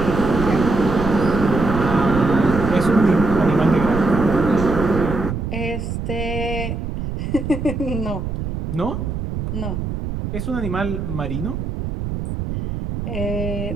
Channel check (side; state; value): right; noise; rumble, 4 dB below the sound